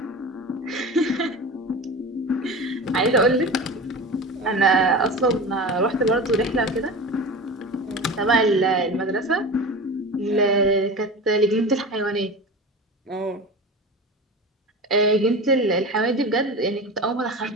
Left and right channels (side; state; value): both; normal; correlation 0.30